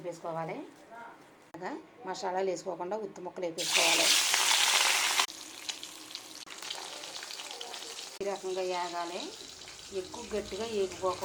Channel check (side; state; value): both; identical; correlation 1.00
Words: మసాలాలు వేసుకోకుండా ఉత్తి ముక్కలు వేసుకోవాలి. ఈ రకంగా వేగాలి, ఎక్కువ గట్టిగా